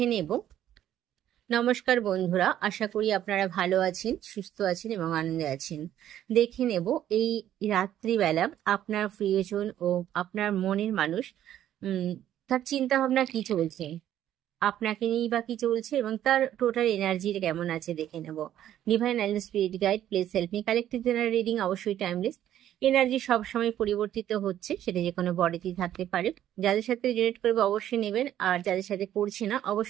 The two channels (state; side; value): quieter; left; 11.6 dB